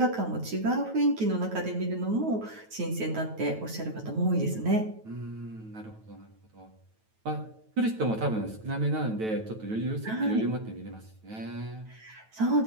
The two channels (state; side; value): late; left; 9.2 ms